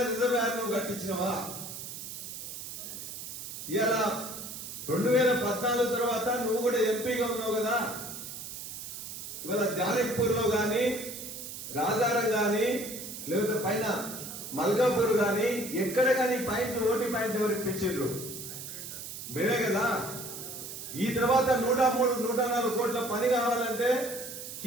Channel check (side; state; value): right; noise; hiss, 9 dB below the sound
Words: రిజర్వాయర్ నువ్వు కట్టించినవా? ఇవాళ 2014 తర్వాత నువ్వు కూడా ఎంపీగా ఉన్నావు కదా. ఇవాళ జానక్పూర్ లో గాని, రాజారం గాని, లేకపోతే పైన మల్కాపూర్ గాని ఎక్కడ గాని పాయింట్లు ఓటీ పాయింట్లు ఎవరు ఇప్పించారు? మేమే కదా. ఈ తర్వాత 103, 104 కోట్ల పని కావాలంటే